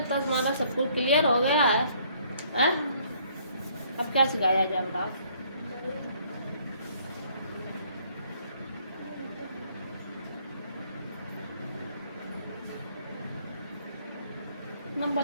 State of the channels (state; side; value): inverted; both; correlation -0.63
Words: तुम्हारा सब कुछ क्लियर हो गया है? अब क्या सिखाया जाए बताओ?